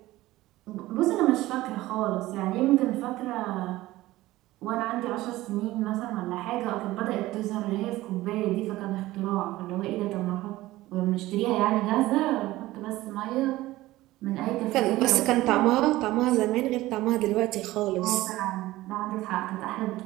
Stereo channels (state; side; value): quieter; left; 17.3 dB